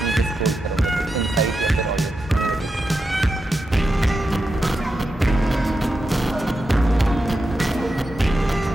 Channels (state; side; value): normal; both; correlation 0.88